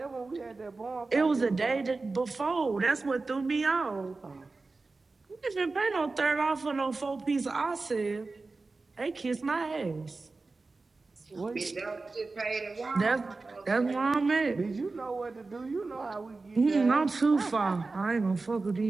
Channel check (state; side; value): quieter; left; 3.7 dB